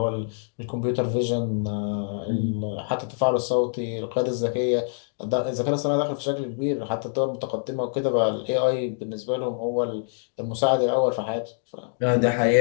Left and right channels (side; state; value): right; silent; digital silence